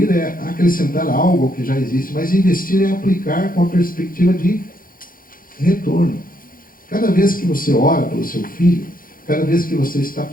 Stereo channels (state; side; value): late; right; 0.41 ms